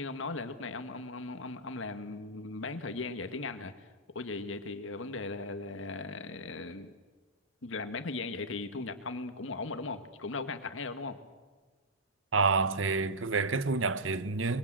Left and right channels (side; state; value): both; normal; correlation -0.09